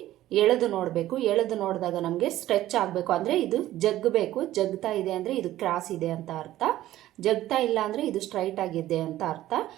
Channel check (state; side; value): quieter; left; 14.3 dB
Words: ಎಳೆದು ನೋಡಬೇಕು. ಎಳೆದು ನೋಡಿದಾಗ ನಮಗೆ ಸ್ಟ್ರೆಚ್ ಆಗಬೇಕು. ಅಂದರೆ ಇದು ಜಗ್ಗಬೇಕು. ಜಗ್ತಾ ಇದೆ ಅಂದರೆ ಇದು ಕ್ರಾಸ್ ಇದೆ ಅಂತ ಅರ್ಥ. ಜಗ್ತಾ ಇಲ್ಲ ಅಂದರೆ ಇದು ಸ್ಟ್ರೈಟ್ ಆಗಿದೆ ಅಂತ ಅರ್ಥ.